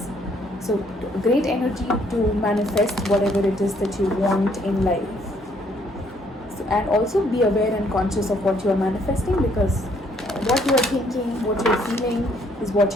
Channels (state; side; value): normal; both; correlation 0.67